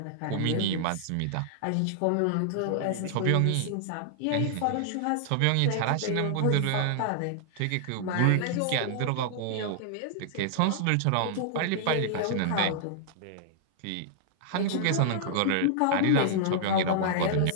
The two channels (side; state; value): both; different; correlation -0.01